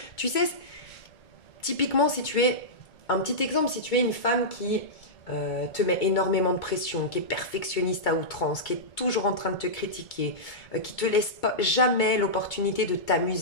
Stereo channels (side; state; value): right; late; 2.2 ms